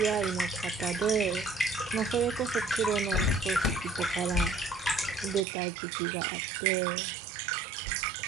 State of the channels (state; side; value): drops out; left; at 5.5 s